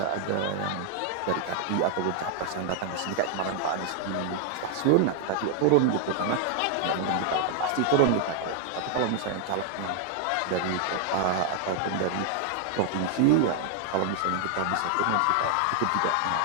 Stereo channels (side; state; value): both; different; correlation 0.00